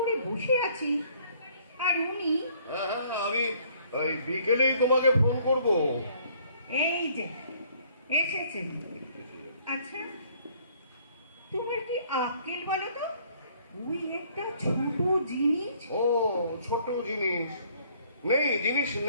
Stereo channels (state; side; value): inverted; both; correlation -0.61